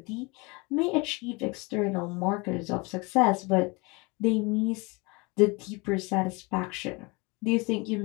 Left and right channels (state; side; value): quieter; right; 27.0 dB